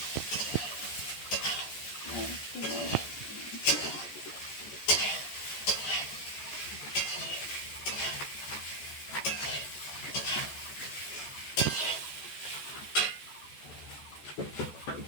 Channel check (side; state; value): right; late; 14 ms